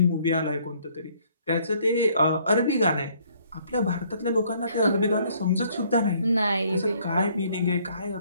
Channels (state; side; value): inverted; both; correlation -0.63